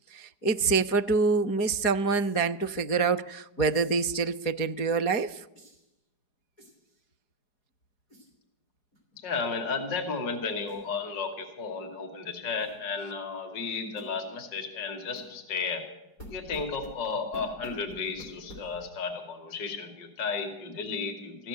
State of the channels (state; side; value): late; right; 4.8 ms